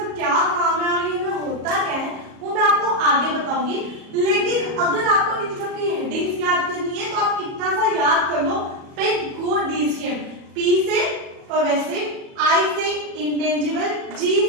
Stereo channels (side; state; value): left; late; 37 ms